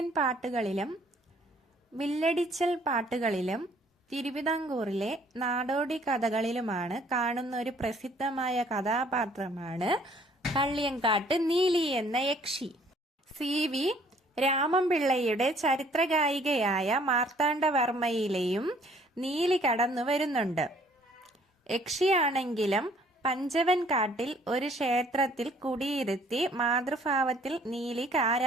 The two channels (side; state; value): both; normal; correlation 0.60